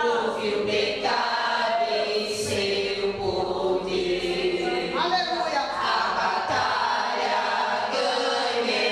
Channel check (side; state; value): both; identical; correlation 1.00